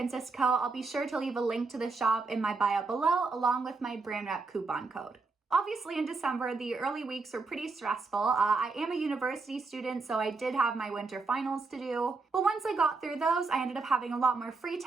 Co. I'll be sure to leave a link to the shop in my bio below, along with my brand rep coupon code. Obviously in December, the early weeks were pretty stressful. I am a university student, so I did have my winter finals to do. But once I got through those, I ended up having a lot more free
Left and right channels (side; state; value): left; quieter; 4.1 dB